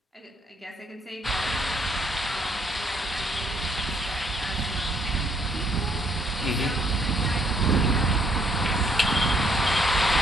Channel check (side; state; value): both; normal; correlation 0.68